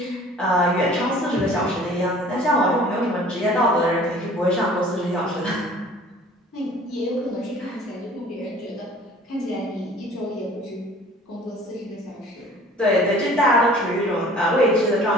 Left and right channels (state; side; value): normal; both; correlation 0.49